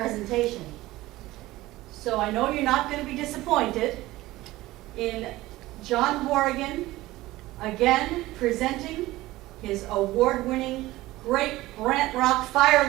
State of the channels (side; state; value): left; quieter; 17.8 dB